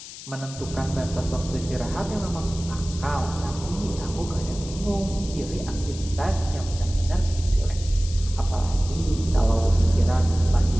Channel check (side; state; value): left; noise; hiss, 14 dB below the sound